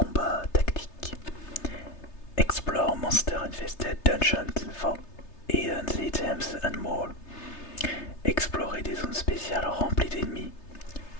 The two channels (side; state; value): right; late; 3.3 ms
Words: tactiques. Explore monster-infested dungeons for hidden items and more. Explorer des zones spéciales remplies d'ennemis.